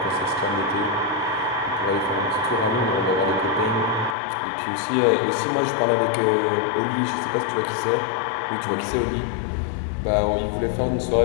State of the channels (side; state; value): right; drops out; at 4.2 s